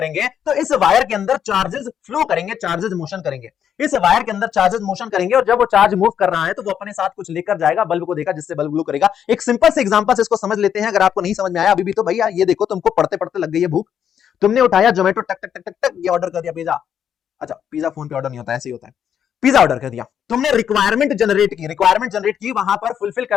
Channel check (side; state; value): right; quieter; 8.7 dB